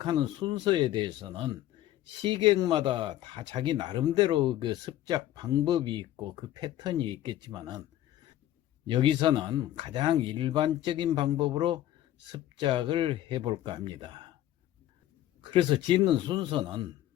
순서에 대해서는 시객마다 다 자기 나름대로 그 습작 방법이 있고 그 패턴이 있겠지만은 여기서는 가장 일반적인 방법으로 습작을 해볼까 합니다. 그래서 짓는 순서는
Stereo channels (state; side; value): quieter; right; 13.4 dB